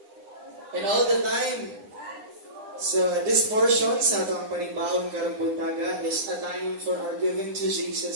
And all the time. So, this portion sa atong panibahon karong buntaga is a time for our giving to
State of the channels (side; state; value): left; late; 9.8 ms